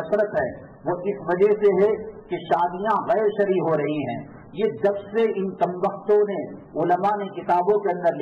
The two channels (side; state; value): both; identical; correlation 1.00